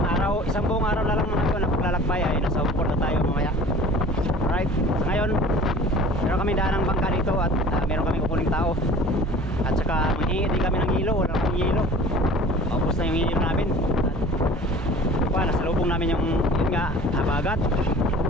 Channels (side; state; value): both; normal; correlation 0.44